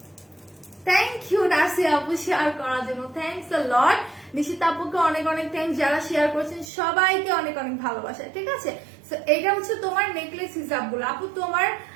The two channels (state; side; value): drops out; left; at 6.7 s